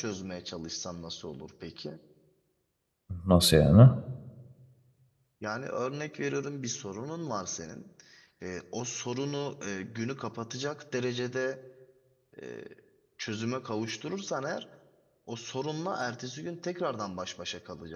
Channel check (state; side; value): identical; both; correlation 1.00